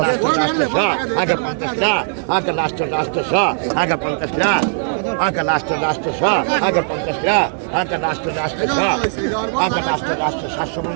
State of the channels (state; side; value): silent; left; digital silence